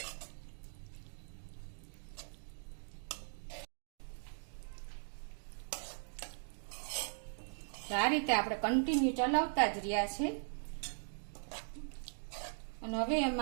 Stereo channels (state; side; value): silent; left; digital silence